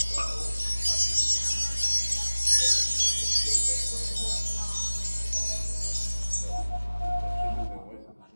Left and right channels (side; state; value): both; inverted; correlation -1.00